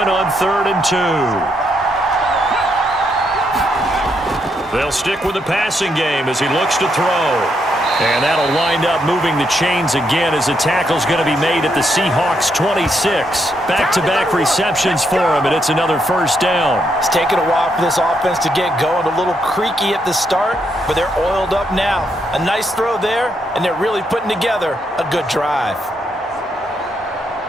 on 3rd and 2. They'll stick with the passing game as he looks to throw. And that'll wind up moving the chains again as the tackle's going to be made at the Seahawks 26. Back-to-back receptions for him, and it's another 1st down. It's taken a while for this offense to get going. A little creaky at the start, but they're oiled up now. A nice throw there, and they're really putting together a good drive.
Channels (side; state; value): both; normal; correlation 0.78